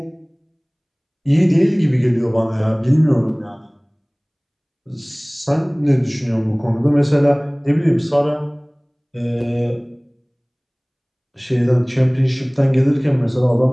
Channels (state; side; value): identical; both; correlation 1.00